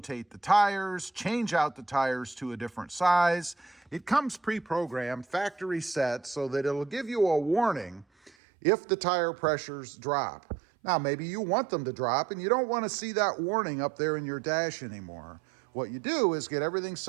the tires, change out the tires to a different size. It comes pre-programmed, factory set, so that it'll give you a warning if the tire pressures drop. Now, maybe you want them to drop and you don't want to see that warning up there in your dash anymore. What you do is get everything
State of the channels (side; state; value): left; drops out; at 8.3 s